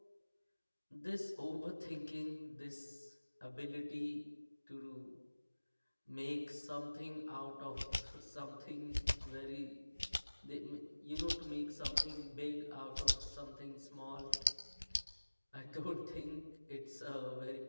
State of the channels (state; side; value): inverted; both; correlation -1.00